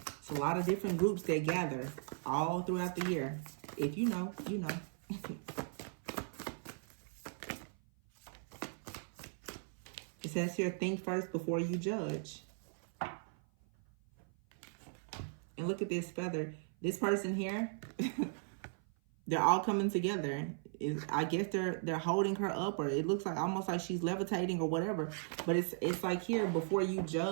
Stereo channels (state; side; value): silent; left; 53 dB below the other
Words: It's a lot of different groups that gather all throughout the year. If you know, you know. It says here, think first before you judge. look at this feather. This person here, they're all coming together. I guess they're holding her up, or it looks like almost like she's levitating or whatever. But it's like here, before you